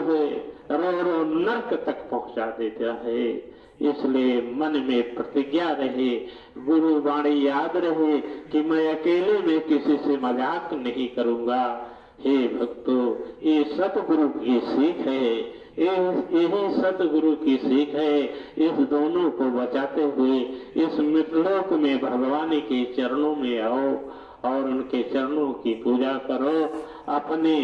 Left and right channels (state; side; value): identical; both; correlation 1.00